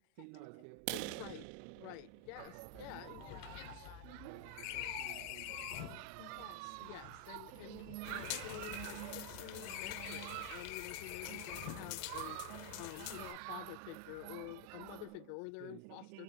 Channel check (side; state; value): both; different; correlation 0.00